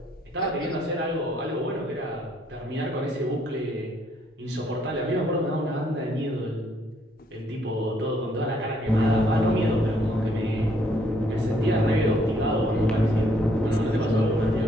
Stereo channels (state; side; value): normal; both; correlation 0.68